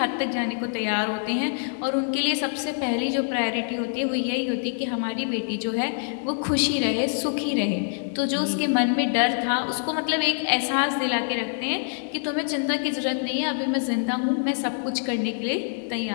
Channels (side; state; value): right; silent; digital silence